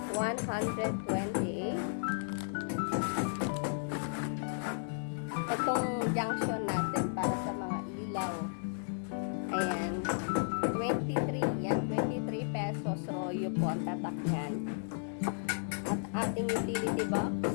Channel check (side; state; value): right; silent; digital silence